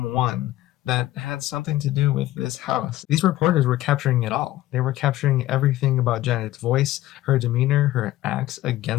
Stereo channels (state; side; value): quieter; right; 15.4 dB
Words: that had something to do with this house. These reporters were capturing it all. They were capturing everything about Janet's voice, her demeanor, her acts